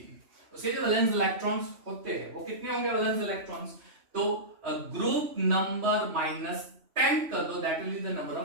उसके जो वैलेंस इलेक्ट्रॉन्स होते हैं वो कितने होंगे वैलेंस इलेक्ट्रॉन्स? तो ग्रुप नंबर -10 कर दो, that will be the number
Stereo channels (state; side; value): late; left; 3.0 ms